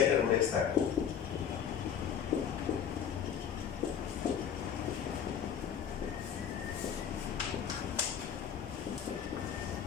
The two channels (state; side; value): quieter; right; 8.3 dB